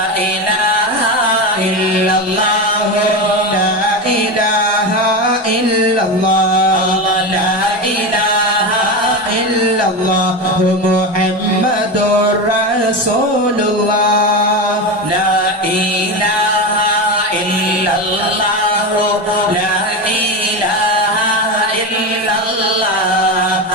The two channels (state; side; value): normal; both; correlation 0.19